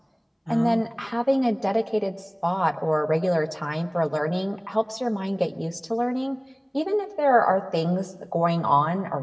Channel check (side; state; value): both; identical; correlation 1.00